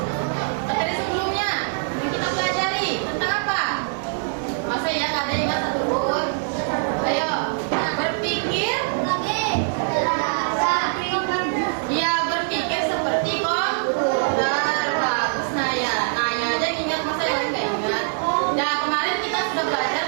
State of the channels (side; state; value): left; silent; digital silence